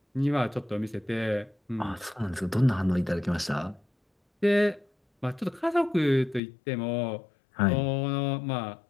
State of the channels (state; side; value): drops out; right; at 6.4 s